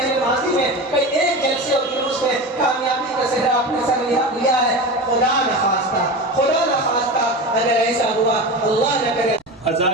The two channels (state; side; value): normal; both; correlation 0.27